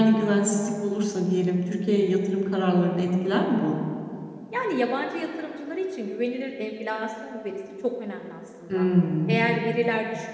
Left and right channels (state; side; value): identical; both; correlation 1.00